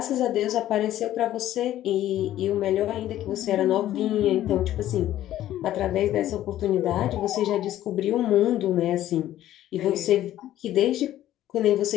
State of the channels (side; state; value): right; quieter; 13.1 dB